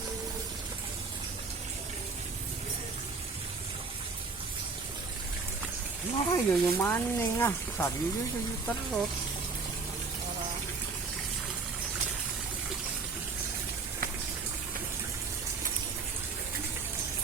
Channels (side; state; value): left; quieter; 4.4 dB